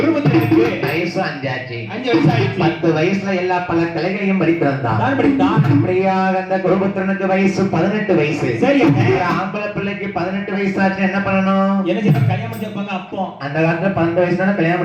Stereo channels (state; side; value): identical; both; correlation 1.00